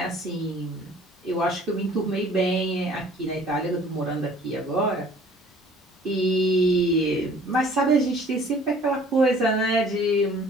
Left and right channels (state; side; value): normal; both; correlation 0.53